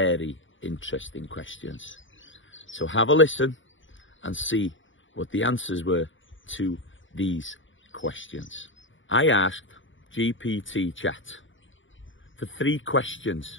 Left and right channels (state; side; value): late; right; 0.56 ms